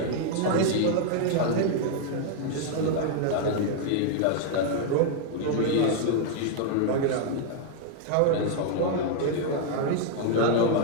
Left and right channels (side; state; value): both; different; correlation 0.00